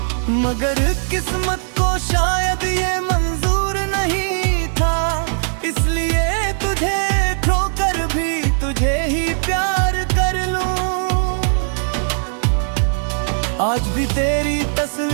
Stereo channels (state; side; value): silent; left; digital silence